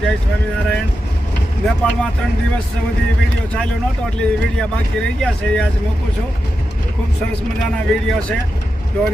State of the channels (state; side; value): normal; both; correlation 0.89